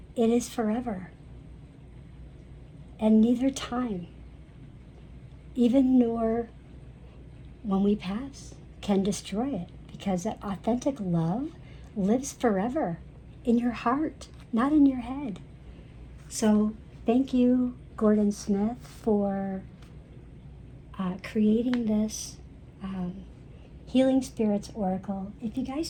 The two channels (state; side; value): identical; both; correlation 1.00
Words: it is forever. And neither time, even nor when we pass, can destroy it, because that authentic love lives forever in your heart, not in your head. So thank you, Gordon Smith, for creating this Healing Spirits Oracle. If you guys